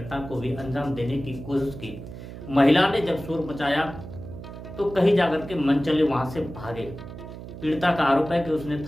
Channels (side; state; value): right; noise; hum, 12 dB below the sound